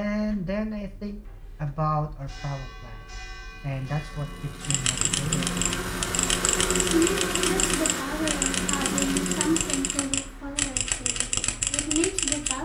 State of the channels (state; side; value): identical; both; correlation 1.00